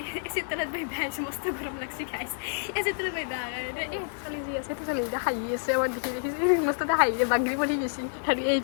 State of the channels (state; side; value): silent; right; digital silence